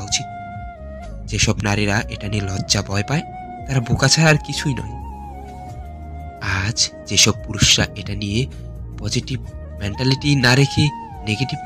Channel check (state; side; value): identical; both; correlation 1.00